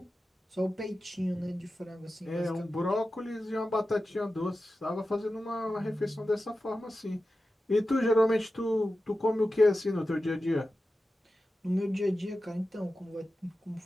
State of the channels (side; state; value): both; normal; correlation 0.93